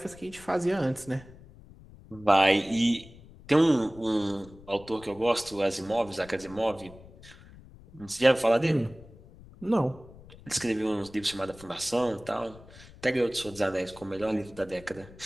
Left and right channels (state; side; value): noise; left; rumble, 21 dB below the sound